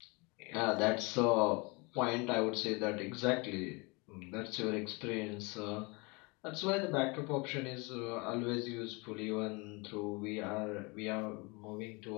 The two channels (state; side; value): quieter; right; 28.4 dB